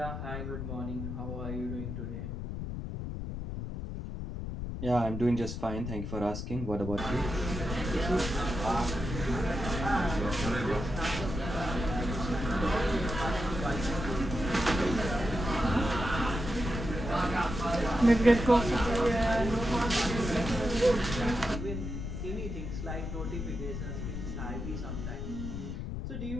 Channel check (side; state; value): left; noise; rumble, 5 dB below the sound